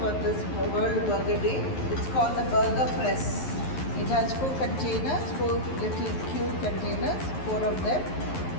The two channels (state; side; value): late; right; 11 ms